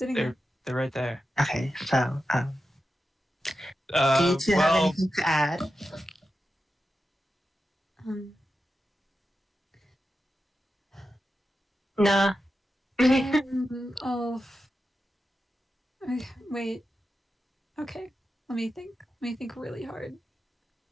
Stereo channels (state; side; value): normal; both; correlation 0.90